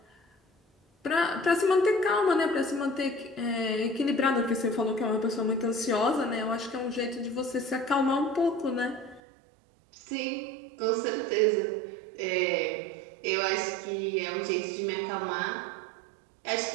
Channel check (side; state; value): left; drops out; at 9.2 s